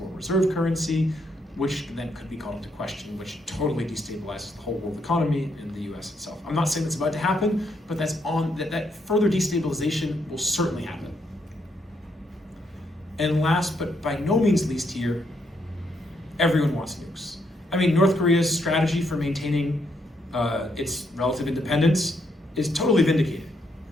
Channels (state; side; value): normal; both; correlation 0.75